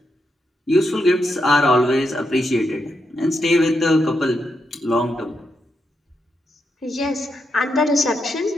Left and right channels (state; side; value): normal; both; correlation 0.83